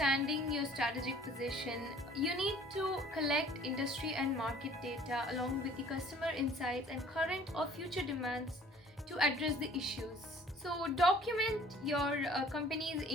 your strategic position, you need to collect industry and market data along with the customer insights and current or future demands to address the issues. So document your company's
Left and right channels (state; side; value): normal; both; correlation 0.52